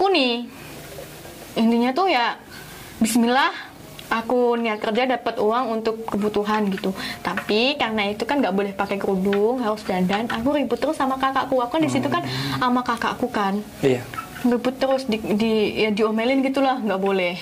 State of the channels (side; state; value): both; identical; correlation 1.00